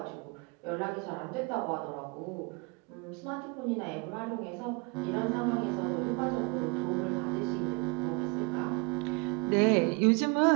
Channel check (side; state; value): left; quieter; 30.8 dB